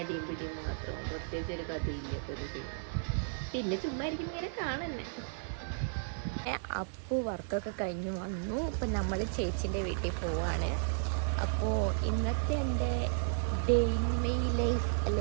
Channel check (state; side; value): silent; left; digital silence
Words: പിടിയും മാത്രം, പ്രത്യേകിച്ച് ഒരു കഥയില്ലാത്തൊരു സിനിമ. പിന്നെ ചുമ്മാ ഇരിക്കും ഇങ്ങനെ കാണുന്നെ. അപ്പു വർക്കൊക്കെ കഴിഞ്ഞ് വന്നു. ഇപ്പം നമ്മൾ ചേച്ചീൻ്റെ വീട്ടിൽ പോവാണ്. അപ്പോൾ ഇന്നത്തെ എൻ്റെ ഡേ ഇൻ മൈ ലൈഫ്